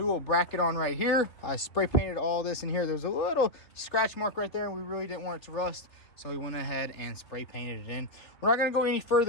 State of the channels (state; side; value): late; right; 3.3 ms